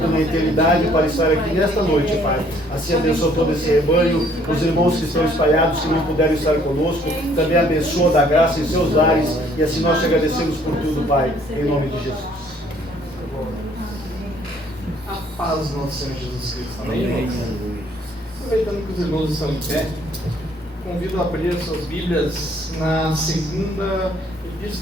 na eternidade para estar aqui nesta noite, Pai. Assim abençoa todo esse rebanho, os irmãos que estão espalhados, que não puderam estar conosco, também abençoa da graça em seus lares, e assim nós te agradecemos por tudo, Pai, em nome de Jesus. A paz do nosso Senhor Jesus Cristo. Amém? Aproveitando que os irmãos estão em pé, convido a abrir suas Bíblias na segunda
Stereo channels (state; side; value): normal; both; correlation 0.62